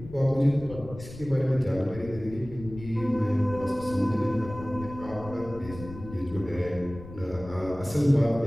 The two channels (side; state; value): left; noise; rumble, 14 dB below the sound